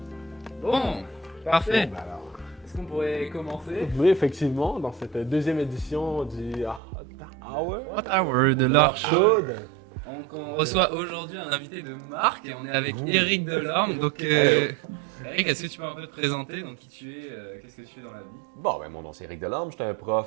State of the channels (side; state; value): left; drops out; at 6.8 s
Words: Bon, parfait. Bon, ben alors. Est-ce qu'on pourrait commencer? Oui, effectivement, dans cette deuxième édition du Hour Hot Hour de l'art chaud. chaude. On reçoit aujourd'hui un invité de marque et on est avec Eric Delorme. Donc, Eric, est-ce que tu peux un peu te présenter? Donc, qui tu es, qu'est-ce que tu fais dans la vie? Bon, ben mon nom c'est Eric Delorme, je suis un